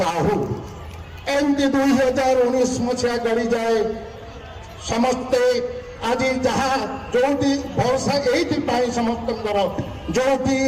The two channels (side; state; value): both; identical; correlation 1.00